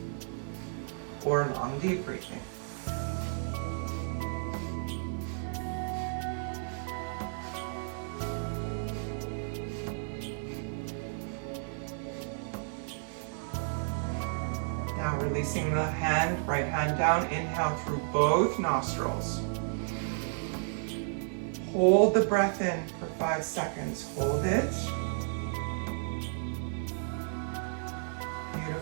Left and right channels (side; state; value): left; silent; digital silence